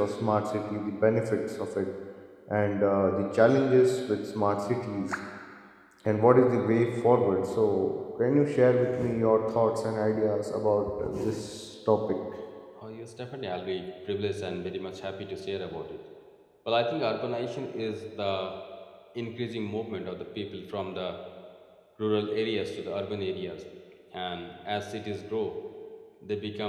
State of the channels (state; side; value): identical; both; correlation 1.00